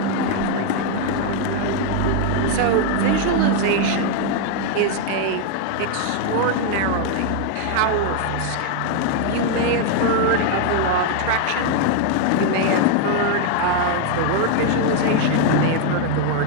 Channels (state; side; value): different; both; correlation 0.00